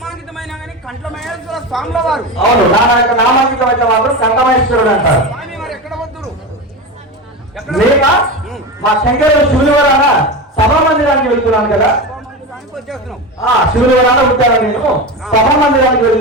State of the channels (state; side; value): normal; both; correlation 0.23